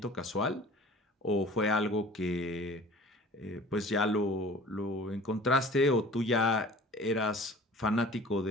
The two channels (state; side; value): normal; both; correlation 0.45